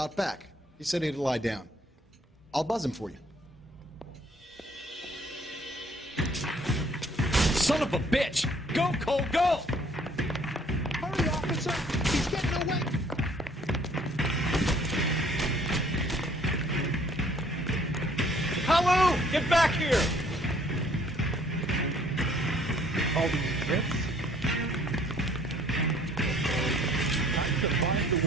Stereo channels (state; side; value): normal; both; correlation 0.60